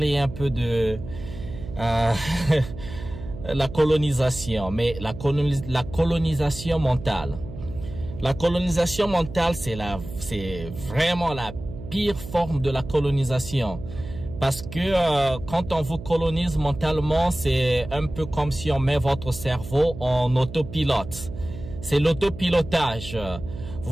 un peu de... la colonisation, mais la colonisation mentale. La colonisation mentale, c'est vraiment la pire forme de la colonisation. Parce que quand on vous colonise mentalement, c'est un peu comme si on met votre cerveau en autopilote. C'est l'autopilotage.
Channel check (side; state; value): right; noise; hum, 12 dB below the sound